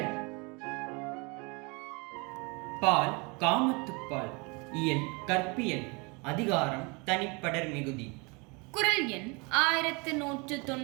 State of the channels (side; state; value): left; quieter; 29.5 dB